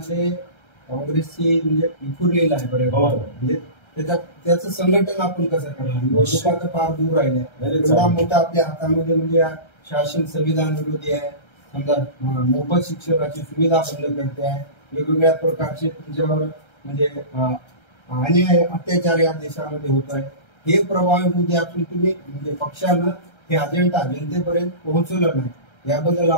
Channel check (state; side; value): late; right; 1.3 ms